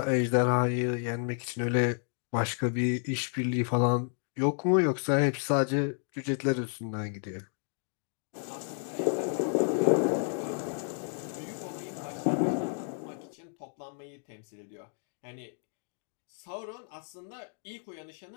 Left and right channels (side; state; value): right; silent; 57 dB below the other